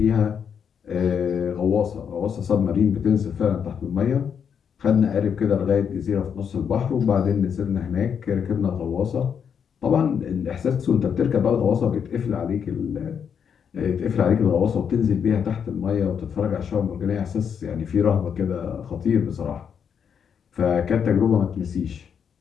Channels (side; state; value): right; quieter; 7.4 dB